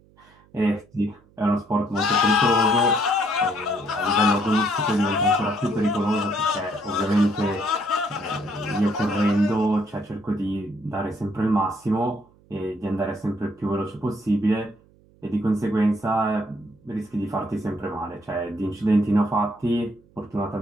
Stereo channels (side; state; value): right; noise; hum, 30 dB below the sound